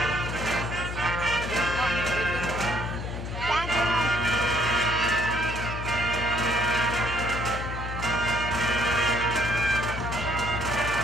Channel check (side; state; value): left; noise; hum, 6 dB below the sound